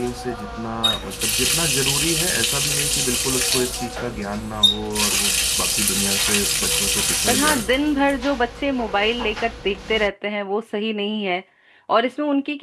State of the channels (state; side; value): identical; both; correlation 1.00